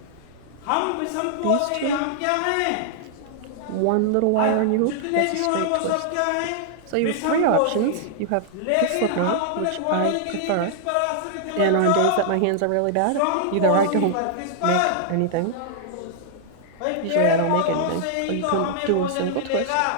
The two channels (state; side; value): different; both; correlation -0.01